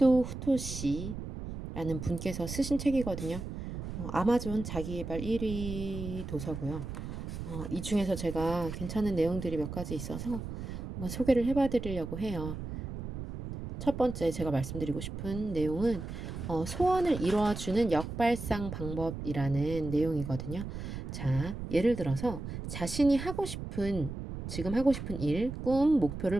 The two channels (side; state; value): right; noise; rumble, 7 dB below the sound